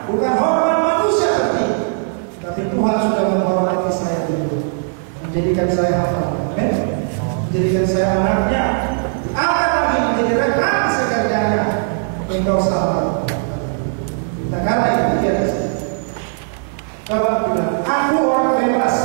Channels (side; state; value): left; silent; digital silence